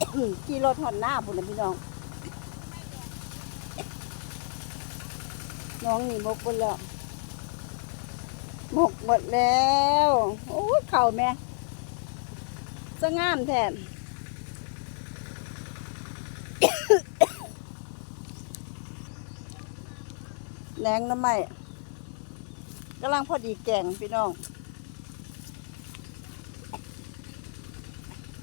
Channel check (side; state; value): right; silent; 58 dB below the other